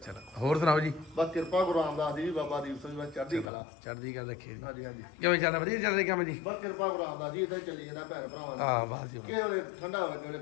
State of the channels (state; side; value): drops out; right; at 3.5 s